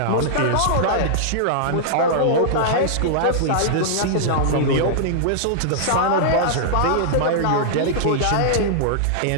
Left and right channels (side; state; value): both; different; correlation -0.02